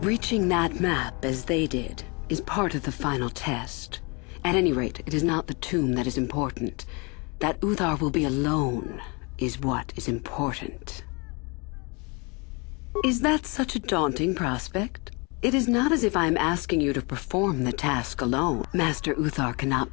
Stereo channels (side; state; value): right; quieter; 29.9 dB